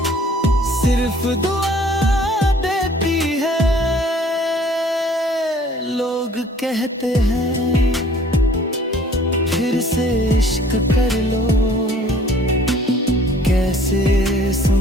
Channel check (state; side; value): normal; both; correlation 0.54